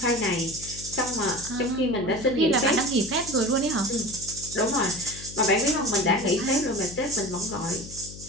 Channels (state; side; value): noise; left; hum, 14 dB below the sound